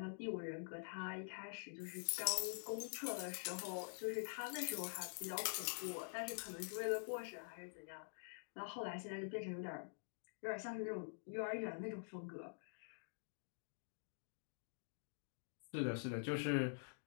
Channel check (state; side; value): silent; right; digital silence